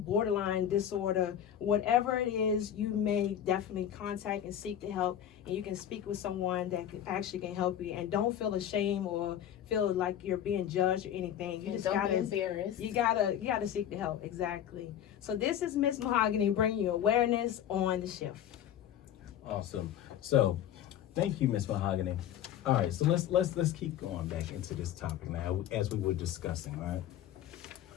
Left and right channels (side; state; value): right; quieter; 10.4 dB